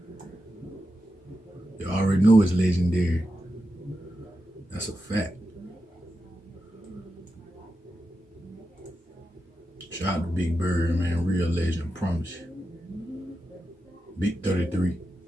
You already know it's legendary. That's a fact. Shout out to Big Bird, man. Real legend, promise you. Big 33.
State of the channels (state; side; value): normal; both; correlation 0.89